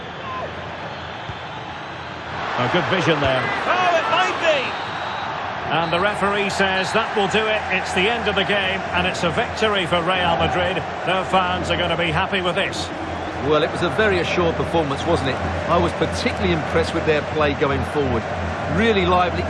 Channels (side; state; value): both; identical; correlation 1.00